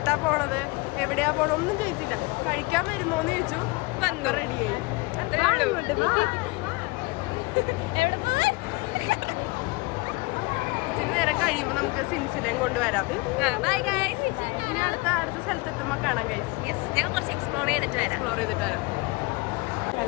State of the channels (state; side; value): quieter; right; 25.3 dB